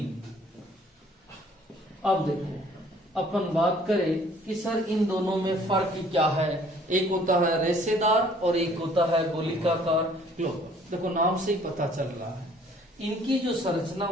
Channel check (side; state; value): both; normal; correlation 0.57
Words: अब देखो अपन बात करें कि सर इन दोनों में फर्क क्या है। एक होता है रेशेदार और एक होता है गोलिकाकार। देखो नाम से ही पता चल रहा है इनकी जो संरचना